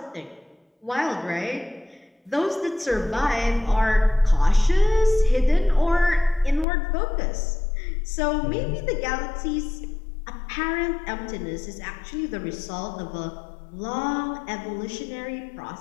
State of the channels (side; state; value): right; drops out; at 6.7 s